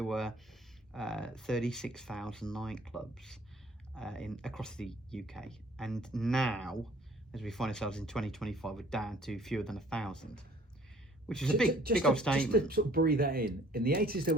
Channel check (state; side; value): normal; both; correlation 0.55